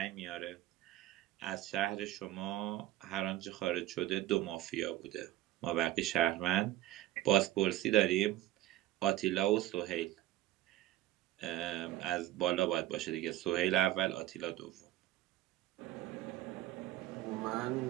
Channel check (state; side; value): quieter; left; 14.5 dB